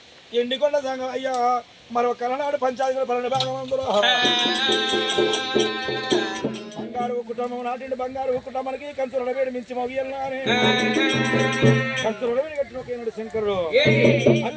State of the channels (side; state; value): both; identical; correlation 1.00